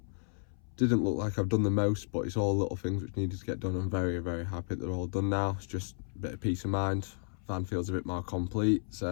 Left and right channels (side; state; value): right; silent; 56 dB below the other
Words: didn't look like I've done the most, but it's all little things which needed to get done. I'm very, very happy they're all done now. It's just a bit of peace of mind. Van feels a bit more complete,